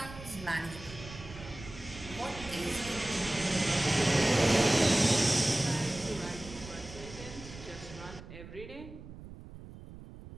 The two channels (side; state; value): right; noise; rumble, 14 dB below the sound